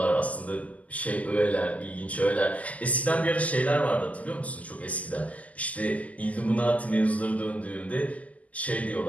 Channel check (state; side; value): late; right; 0.072 ms